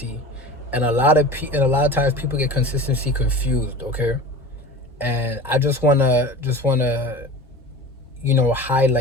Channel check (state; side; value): normal; both; correlation 0.35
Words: And a lot of times people get consistency confused, okay? And I just wanna